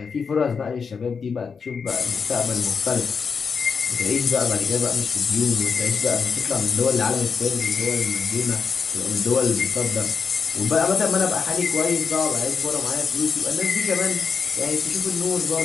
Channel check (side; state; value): right; quieter; 5.7 dB